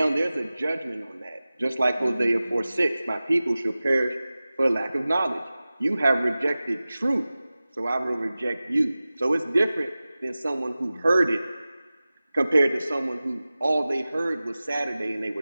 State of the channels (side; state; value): both; inverted; correlation -0.97